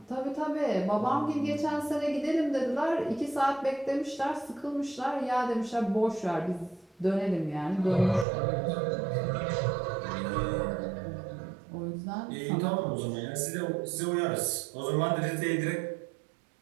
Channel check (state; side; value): drops out; left; at 8.2 s